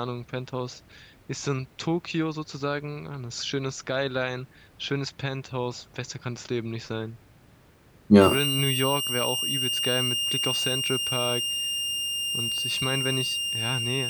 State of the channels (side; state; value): both; identical; correlation 1.00